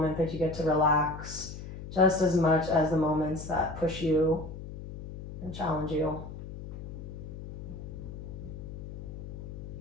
that you get to relax just as much as the moments that push you and challenge you.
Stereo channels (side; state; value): left; noise; hum, 10 dB below the sound